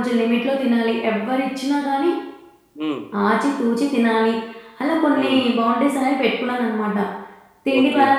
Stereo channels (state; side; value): identical; both; correlation 1.00